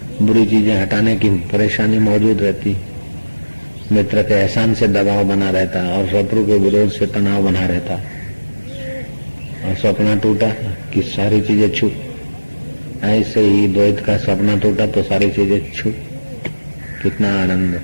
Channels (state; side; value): inverted; both; correlation -1.00